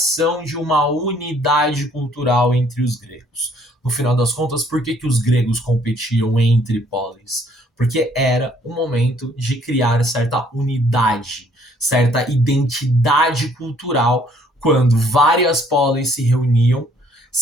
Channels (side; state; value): both; normal; correlation 0.62